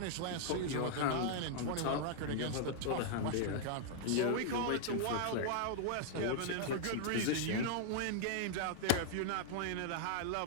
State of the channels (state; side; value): different; both; correlation -0.01